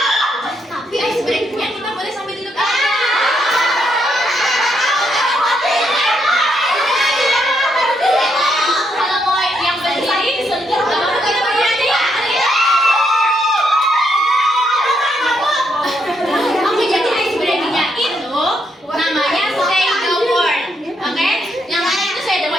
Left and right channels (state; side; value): normal; both; correlation 0.77